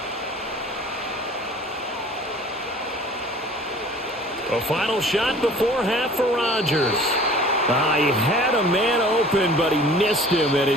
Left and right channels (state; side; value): normal; both; correlation 0.47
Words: A final shot before half for Rodgers. He had a man open, but he missed him, and